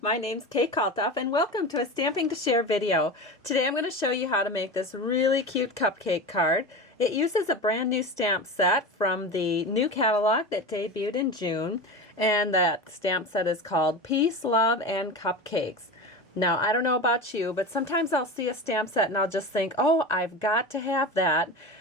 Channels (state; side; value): normal; both; correlation 0.27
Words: my name's Kalthoff and welcome to a Stamping to Share video. Today I'm going to show you how to make this really cute cupcake card. It uses a brand new stamp set from the new catalog that debuted in June, and that stamp set is called Peace, Love, and Cupcakes. Now I don't know about you, but sometimes I'll see a stamp set and I'll just think, oh, I've got to have that,